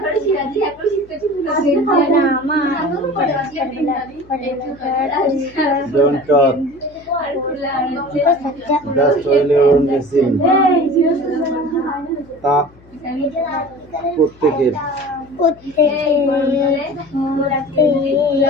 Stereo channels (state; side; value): noise; left; hum, 26 dB below the sound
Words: Don't talk. That's only on machine. তাপ প্রত্যেকের